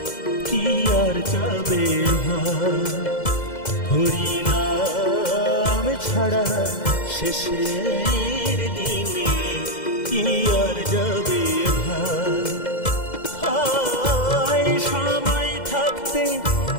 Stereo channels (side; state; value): right; late; 2.1 ms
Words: কি আর যাবে ভাই, হরি নাম ছাড়া শেষের দিনে কি আর যাবে ভাই। সময় থাকতে